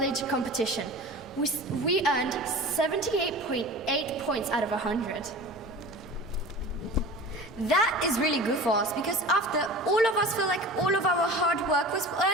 competition. We earned 78.8 points out of 100. That is really good for us because after all of us feel like all of our hard work was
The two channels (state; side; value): normal; both; correlation 0.36